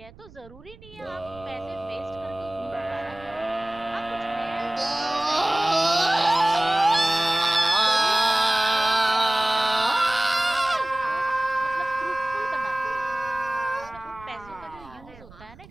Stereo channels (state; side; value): noise; right; rumble, 22 dB below the sound